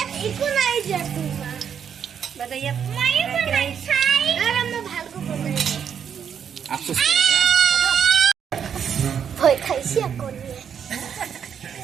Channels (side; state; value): left; quieter; 7.9 dB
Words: আফসোস করে ভয় খাইছি এখন